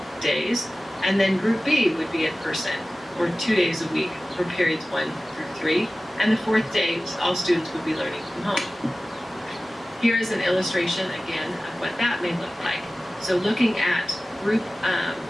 days, and then Group B would be in person for 2 days a week for periods 1 through 3, and the 4th day, all students would be learning from home. Here is an illustration again of what that may look like. So looking at Group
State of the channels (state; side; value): normal; both; correlation 0.97